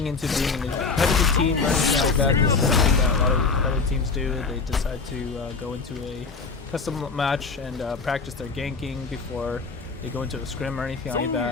into being a competitive team or anything like that, this is something that a lot of competitive teams do. They decide to go into a custom match and practice their ganking before they go into a scrim or anything like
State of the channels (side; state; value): right; quieter; 4.5 dB